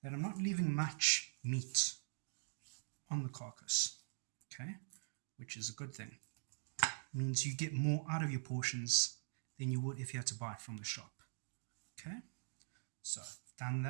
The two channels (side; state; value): left; silent; digital silence